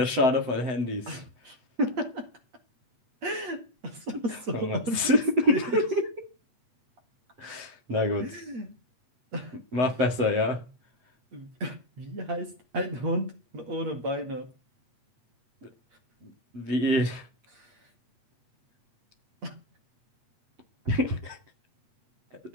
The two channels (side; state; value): left; late; 8.0 ms